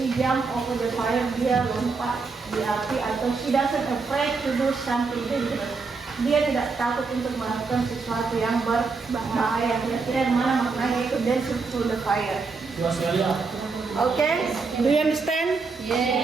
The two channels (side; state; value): left; quieter; 4.4 dB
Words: jump over the fire, dia lompat di api, atau she doesn't afraid to do something dangerous, dia tidak takut untuk melakukan sesuatu yang berbahaya. Kira-kira yang mana maknanya itu dancing through the fire? Okay, do you understand?